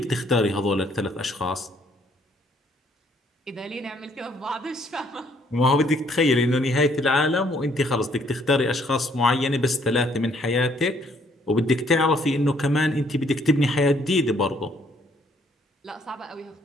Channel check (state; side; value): normal; both; correlation 0.66